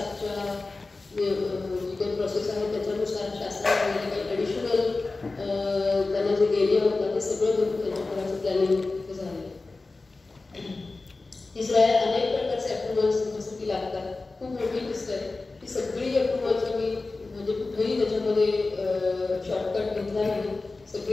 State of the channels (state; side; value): quieter; right; 3.5 dB